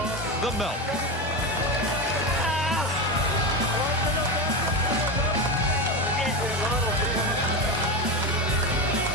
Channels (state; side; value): normal; both; correlation 0.17